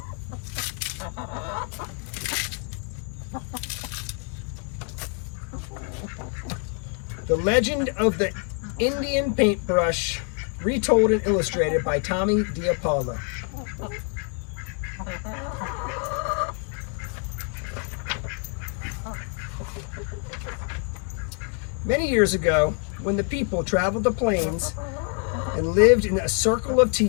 The Legend of the Indian Paintbrush, retold and illustrated by dePaolo. Many years ago, when the people traveled the plains and lived in a circle of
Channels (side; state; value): right; quieter; 37.6 dB